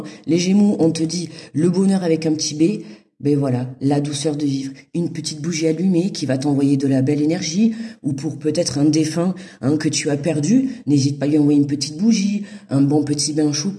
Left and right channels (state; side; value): identical; both; correlation 1.00